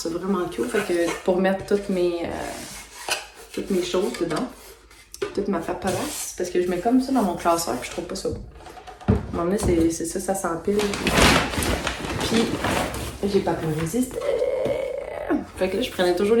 vraiment cool. Fait que pour mettre toutes mes choses dedans, toute ma paperasse, parce que je mets comme ça dans mon classeur, puis je trouve pas ça beau. À un moment donné, c'est ça, ça s'empile. Puis, j'ai pas pu résister. Fait que là, je prenais toujours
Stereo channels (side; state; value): both; identical; correlation 1.00